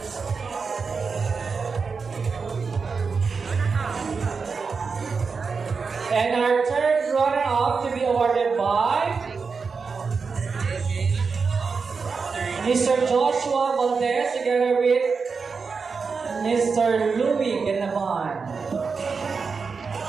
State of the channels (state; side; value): quieter; left; 5.1 dB